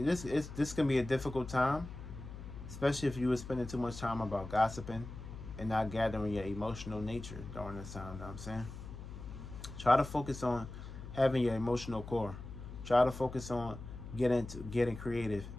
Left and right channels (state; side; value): noise; left; hum, 11 dB below the sound